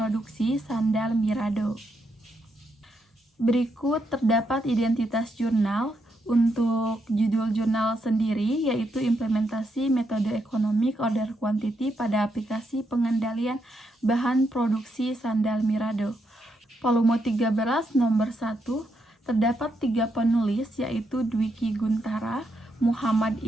sandal Mirado. Berikut terdapat identitas jurnal. Untuk judul jurnal sendiri, yaitu implementasi metode Economic Order Quantity pada aplikasi pengendalian bahan produksi sandal Mirado. Volume 13 nomor 1, terdapat 3 penulis, yaitu Dwiki Guntara, Muhammad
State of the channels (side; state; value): both; normal; correlation 0.80